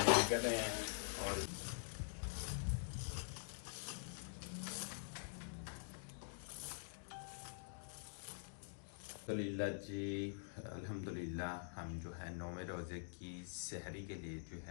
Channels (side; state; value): right; silent; digital silence